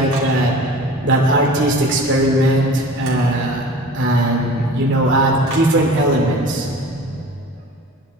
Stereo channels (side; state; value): both; normal; correlation 0.41